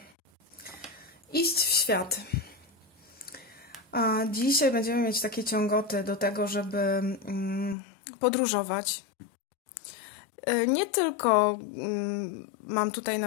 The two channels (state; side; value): drops out; right; at 7.8 s